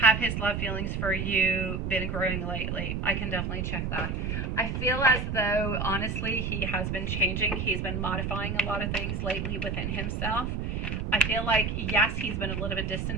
Have his love feelings for you been growing lately? I can definitely check that. I feel as though, honestly, he has been changing. He's been modifying a lot of things lately within himself. I feel like, yes, he's been a little bit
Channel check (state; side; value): noise; right; rumble, 2 dB below the sound